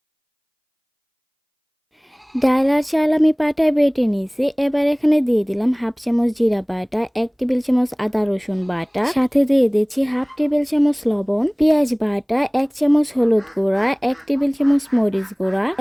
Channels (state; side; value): identical; both; correlation 1.00